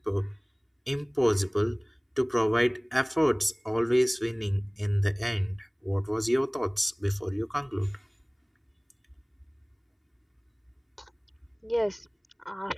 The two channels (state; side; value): identical; both; correlation 1.00